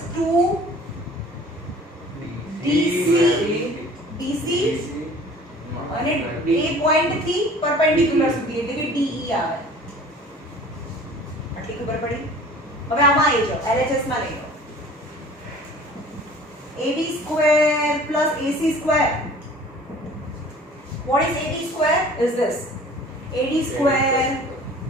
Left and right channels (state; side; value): normal; both; correlation 0.47